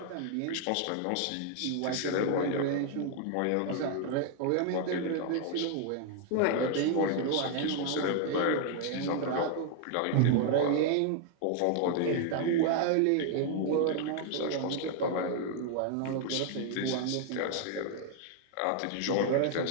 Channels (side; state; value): both; different; correlation 0.00